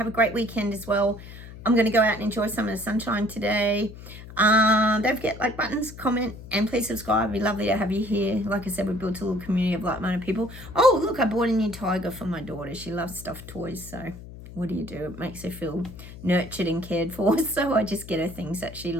a great weekend as well. I'm going to go out and enjoy some of the sunshine today. Don't forget, like buttons, comment, and please subscribe. It'd be lovely to have you here. Like I said, we built a little community of like-minded people. Oh, look, I bought a new tiger for my daughter. She loves stuffed toys, so what do? It makes her feel nurtured and cared for, so I just get her things that she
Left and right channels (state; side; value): noise; left; hum, 15 dB below the sound